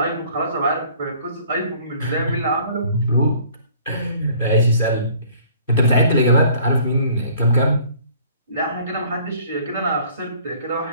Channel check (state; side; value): inverted; both; correlation -0.55